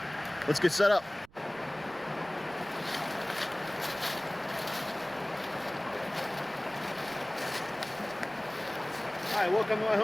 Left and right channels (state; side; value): noise; right; rumble, 26 dB below the sound